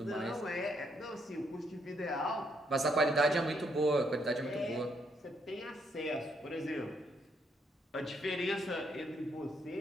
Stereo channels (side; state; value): both; normal; correlation 0.74